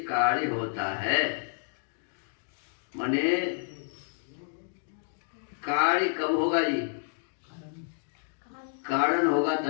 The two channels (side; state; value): right; silent; digital silence